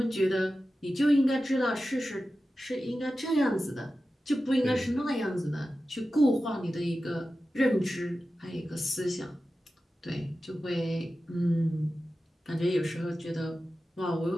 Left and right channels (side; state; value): both; normal; correlation 0.93